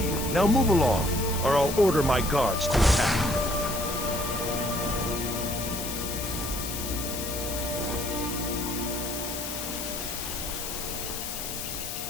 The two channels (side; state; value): left; noise; hiss, 6 dB below the sound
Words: you. Now move along, or I'll order my guards to attack.